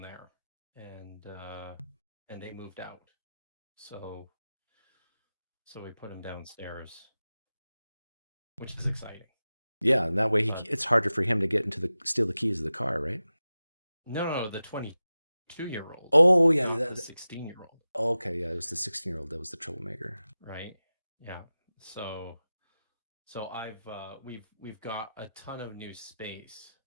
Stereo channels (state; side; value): inverted; both; correlation -0.95